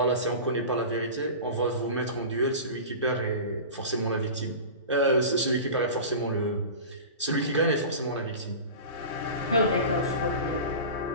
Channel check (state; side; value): inverted; both; correlation -0.33